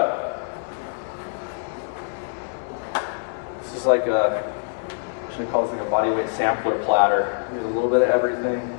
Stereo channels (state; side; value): silent; right; 57 dB below the other